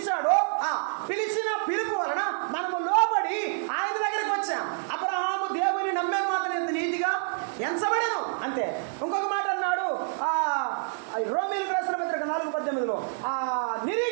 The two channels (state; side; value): silent; left; digital silence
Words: పిలిచిన పిలుపు వలన మనము లోబడి ఆయన దగ్గరికి వచ్చాం. అబ్రహాము దేవుని నమ్మే మాత్రం ఎంత నీతిగా ఎంచబడను అంతే. ఇంకొక మాట అన్నాడు రోమీయులకు రాసిన పత్రిక 4:18